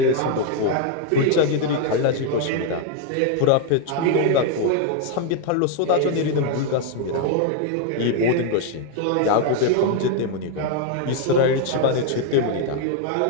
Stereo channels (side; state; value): both; different; correlation 0.01